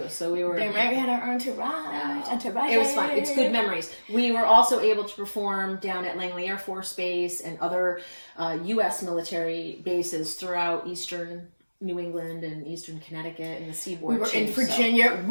so we were. We had our entourage. It was fun. It's good memories. We were also able to perform down at Langley Air Force Base and other U.S. military bases throughout Eastern New England and Eastern Connecticut and the seaboard. We were in Virginia. So.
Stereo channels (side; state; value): both; inverted; correlation -1.00